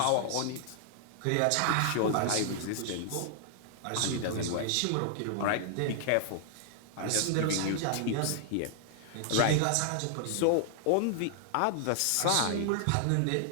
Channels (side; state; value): both; different; correlation 0.00